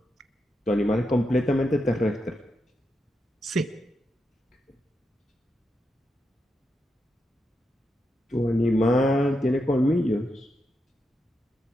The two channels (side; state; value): both; normal; correlation 0.85